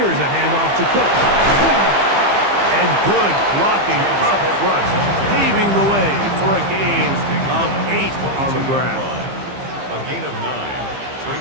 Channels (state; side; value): late; left; 15 ms